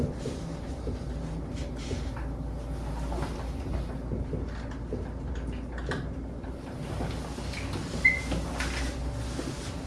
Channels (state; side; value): identical; both; correlation 1.00